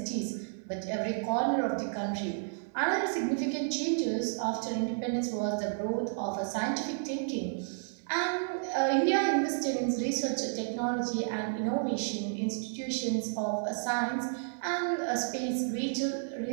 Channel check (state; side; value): silent; left; digital silence